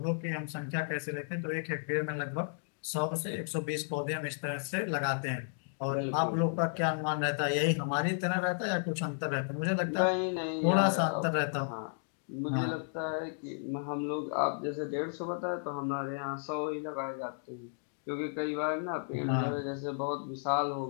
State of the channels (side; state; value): right; silent; digital silence